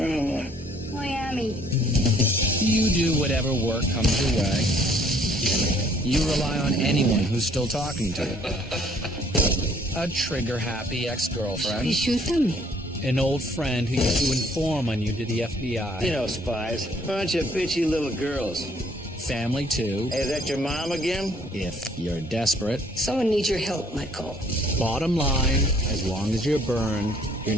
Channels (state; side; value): normal; both; correlation 0.61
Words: Miami. You do whatever work comes your way. You rely on anyone who's still talking to you. A trigger-happy ex-girlfriend. You shoot them? An old friend who used to inform on you to the FBI. You know, spies. Bunch of bitchy little girls. Family, too. Hey, is that your mom again? If you're desperate. Someone needs your help, Michael. Bottom line, as long as you're burned, you're